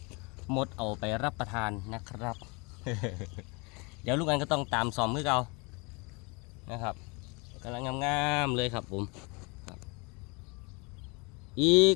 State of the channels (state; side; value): quieter; right; 29.6 dB